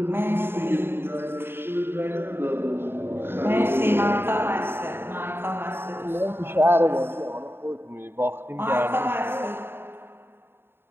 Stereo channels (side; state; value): left; late; 0.11 ms